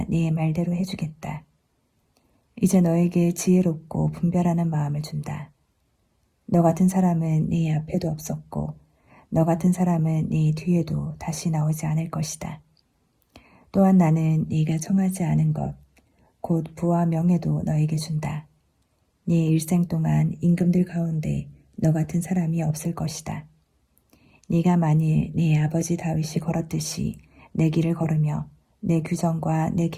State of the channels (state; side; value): identical; both; correlation 1.00